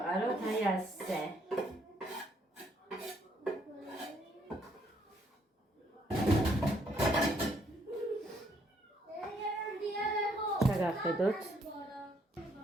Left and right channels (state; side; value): normal; both; correlation 0.69